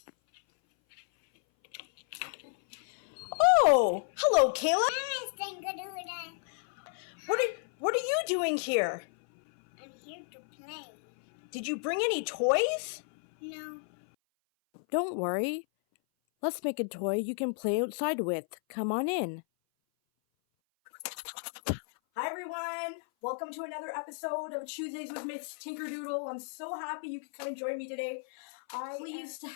Oh, hello, Kayla. ms.tinkerdoodle. What are you doing here? I'm here to play. Did you bring any toys? No. Don't worry. Let's make a toy you can play outside with. Come on in. Hi everyone, welcome to another episode of Tuesdays with Ms. Tinkerdoodle. I'm so happy you could come and join me today. I'm pleased to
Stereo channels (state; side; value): silent; right; 56 dB below the other